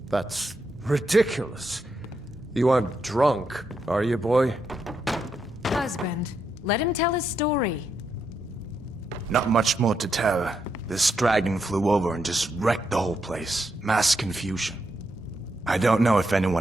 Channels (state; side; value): normal; both; correlation 0.81